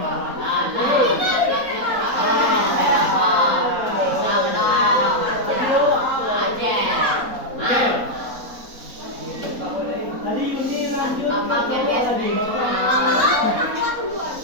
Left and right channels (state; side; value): late; left; 4.0 ms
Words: Tadi ini lanjut